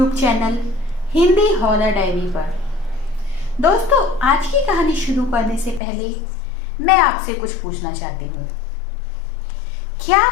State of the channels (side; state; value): right; drops out; at 5.8 s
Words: channel Hindi horror diary पर। दोस्तों, आज की कहानी शुरू करने से पहले मैं आपसे कुछ पूछना चाहती हूँ। क्या